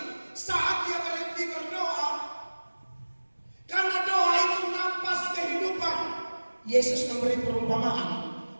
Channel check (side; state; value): both; inverted; correlation -1.00